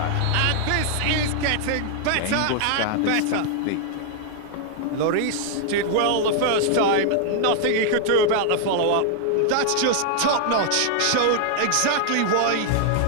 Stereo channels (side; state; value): both; different; correlation 0.00